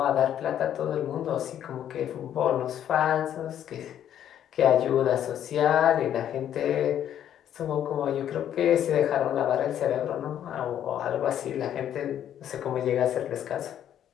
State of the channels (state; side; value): quieter; right; 10.4 dB